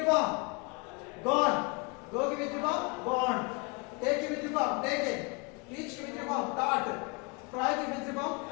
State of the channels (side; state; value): right; quieter; 29.8 dB